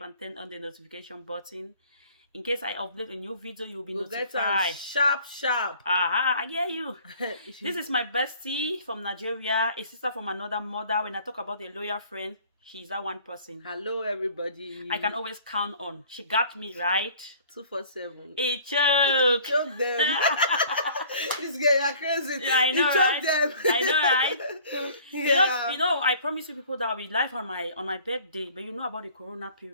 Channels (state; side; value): inverted; both; correlation -0.51